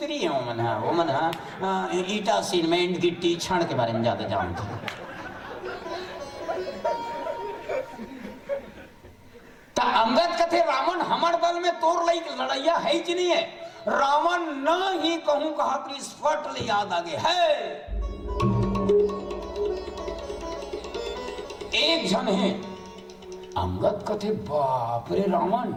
है, वो मन ईटा सीमेंट गिट्टी क्षण के बारे में ज्यादा जानते हैं। अंगद कथे रावण हमर दल में तोर लई लड़ैया है कि नहीं है। रावण न ही कहूं कहा कि स्फट ले याद आगे है। एक जन है अंगद कथे बाप रे रावण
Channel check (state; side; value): identical; both; correlation 1.00